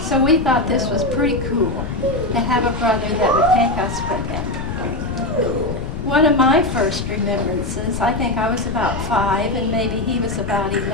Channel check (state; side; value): noise; left; rumble, 6 dB below the sound